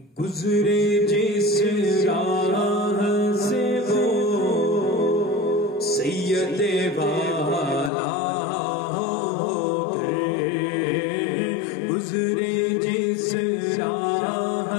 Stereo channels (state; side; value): drops out; right; at 7.9 s